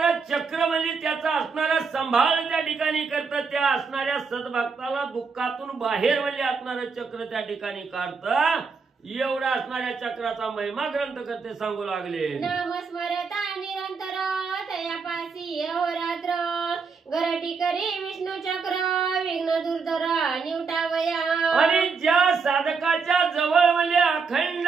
चक्र म्हणजे त्याचा असणारा सांभाळ त्या ठिकाणी करतं. त्या असणाऱ्या सद्भक्ताला दुःखातून बाहेर म्हणजे असणारं चक्र त्या ठिकाणी काढतं. एवढा असणाऱ्या चक्राचा महिमा ग्रंथ करते सांगू लागले. नाम स्मरता निरंतर तयापासी अहोरात्र गरटी करी विष्णू चक्र विघ्न दुर्धर निवटावया. आणि ज्या साधकाच्या जवळ म्हणजे अखंड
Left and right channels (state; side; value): quieter; left; 5.1 dB